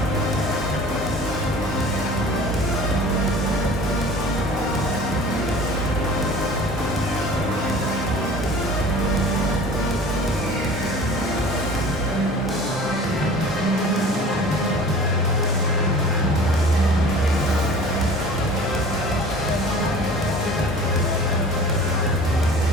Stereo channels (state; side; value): normal; both; correlation 0.43